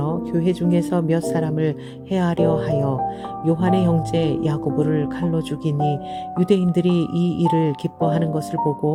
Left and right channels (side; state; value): both; identical; correlation 1.00